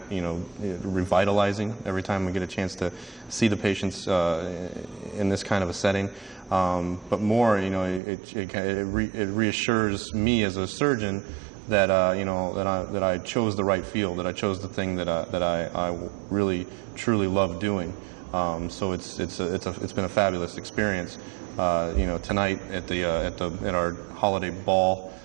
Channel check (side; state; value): left; drops out; at 8.0 s